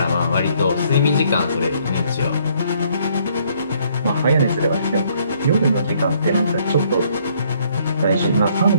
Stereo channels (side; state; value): both; inverted; correlation -0.66